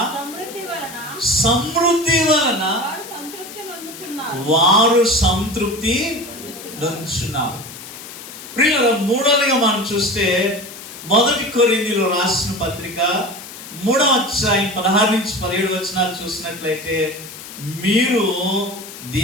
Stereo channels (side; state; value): left; noise; hiss, 14 dB below the sound